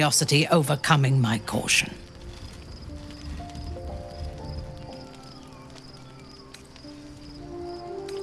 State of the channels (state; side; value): identical; both; correlation 1.00